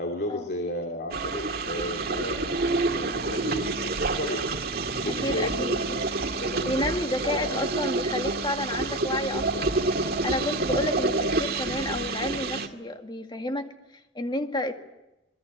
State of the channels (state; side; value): normal; both; correlation 0.21